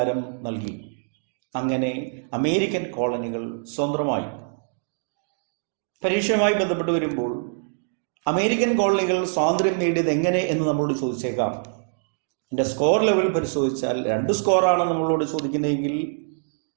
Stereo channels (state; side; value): silent; left; digital silence